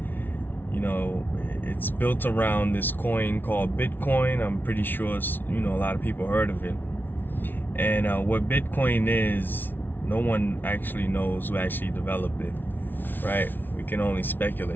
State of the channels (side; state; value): right; late; 0.093 ms